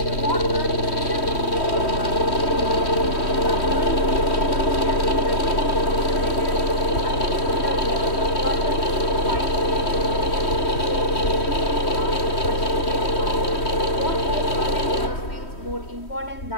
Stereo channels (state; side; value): late; right; 3.1 ms